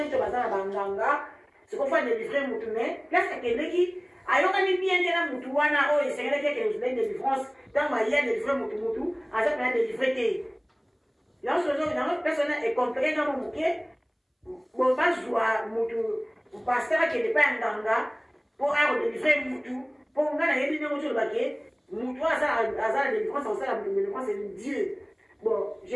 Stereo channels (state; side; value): identical; both; correlation 1.00